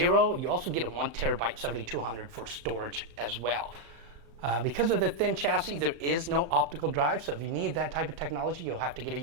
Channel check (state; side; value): late; left; 35 ms